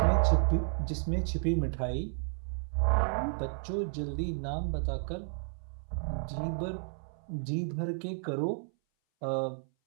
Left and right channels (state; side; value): silent; left; 56 dB below the other